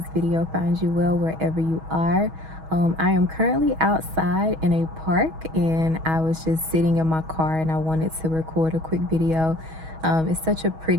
video finds you well wherever you are. I am currently outside in a park and I was just sitting in my car and I wanted to record a quick video. It's such a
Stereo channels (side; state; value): left; late; 6.2 ms